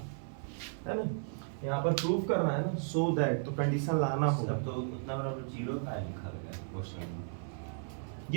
है ना। यहाँ पर प्रूफ करना है ना, सो दैट, तो कंडीशन लाना होगा। तो उतना बराबर 0 का लिखा गया क्वेश्चन में।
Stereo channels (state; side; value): silent; left; 55 dB below the other